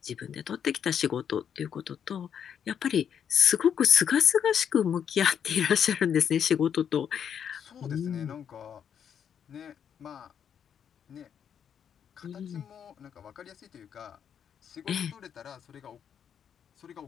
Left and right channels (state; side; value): quieter; right; 8.3 dB